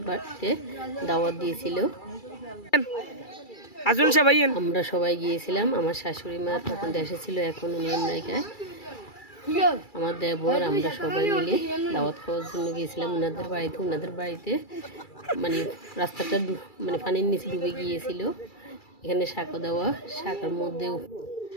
বাড়িতে দাওয়াত দিয়েছিল। আমরা সবাই গিয়েছিলাম। আমার শাশুড়ি মা তখন দেশে ছিল, এখন উনি আমেরিকায়। আমার দেবর আমরা সবাই মিলে দাওয়াত খাওয়ার জন্য গিয়েছিলাম ওনাদের বাড়িতে মানে রাস্তাটা মানে পানির নিচে ডুবে গিয়েছিল। এখানে সাঁকো দেওয়া,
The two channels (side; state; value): right; late; 2.3 ms